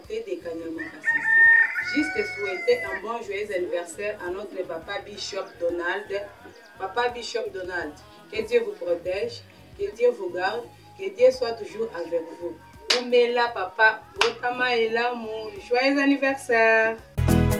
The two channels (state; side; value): identical; both; correlation 1.00